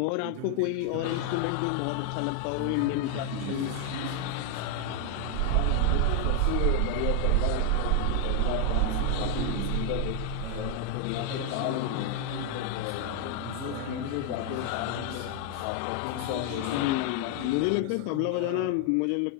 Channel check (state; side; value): different; both; correlation 0.00